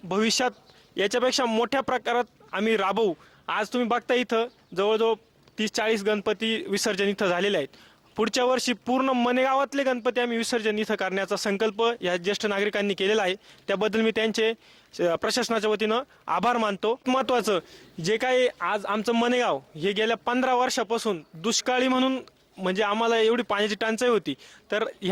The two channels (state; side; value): identical; both; correlation 1.00